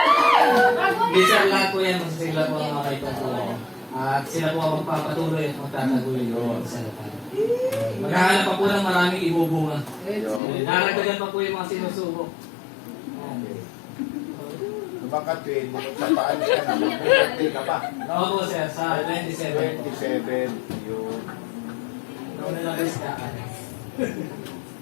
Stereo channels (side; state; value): right; drops out; at 10.4 s